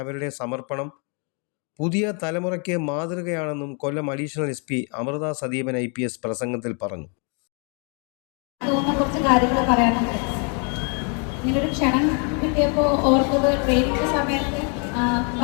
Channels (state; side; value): quieter; right; 37.6 dB